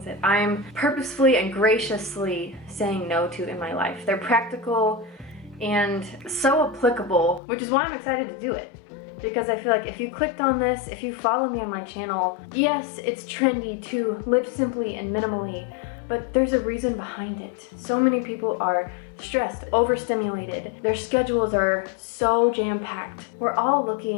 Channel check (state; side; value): drops out; right; at 7.4 s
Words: that I'm purposefully and graciously saying no to in my life. They're practical and so applicable, which is why I'm excited to do it. Because I feel like if you clicked on this, if you follow me on my channel, yes, it's trendy to live simply and minimally, but there's a reason behind it. So many people are stressed, overstimulated. Their schedules are so jam-packed. We're all